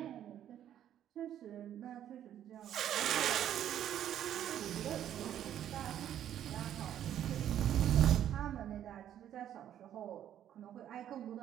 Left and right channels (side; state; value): left; quieter; 10.8 dB